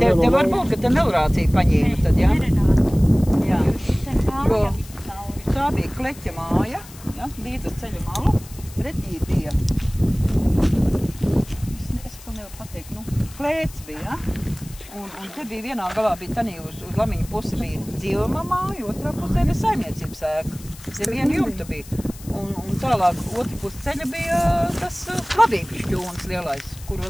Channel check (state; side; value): noise; left; hiss, 19 dB below the sound